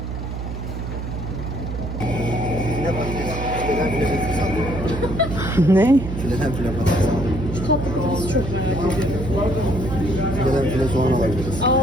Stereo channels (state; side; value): noise; right; hum, 6 dB below the sound